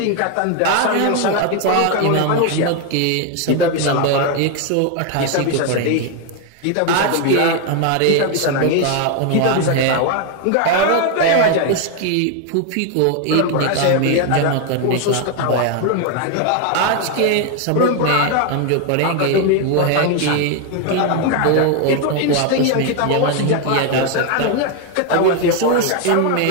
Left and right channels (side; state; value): both; different; correlation 0.01